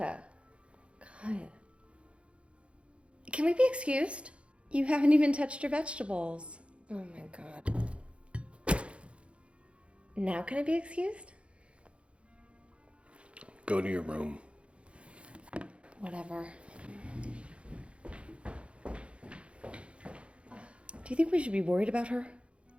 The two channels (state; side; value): late; left; 0.060 ms